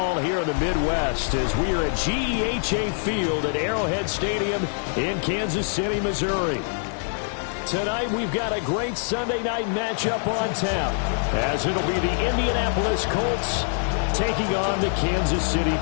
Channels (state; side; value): silent; right; digital silence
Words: here in the Midwest as we are at GEHA Field at Arrowhead Stadium in Kansas City, Missouri. Tonight we've got a great Sunday night matchup on tap as it'll be the Indianapolis Colts taking on the Kansas City